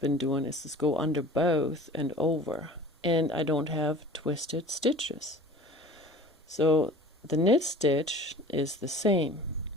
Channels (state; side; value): normal; both; correlation 0.43